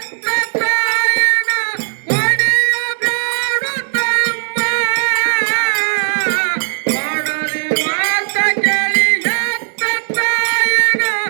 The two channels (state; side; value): silent; left; 63 dB below the other